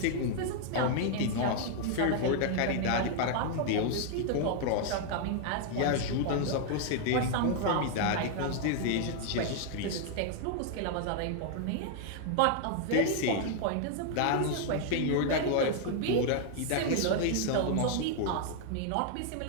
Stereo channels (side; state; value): both; different; correlation 0.00